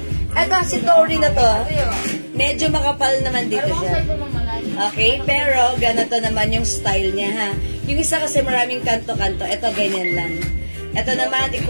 Ito, si Tori na to. Medyo makapal naman dito siya. Okay, pero ganito naman yung style niya, ha. Yung isa kasi maraming kanto-kanto. Ito, ganyan lang. Ito naman,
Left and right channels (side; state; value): both; inverted; correlation -1.00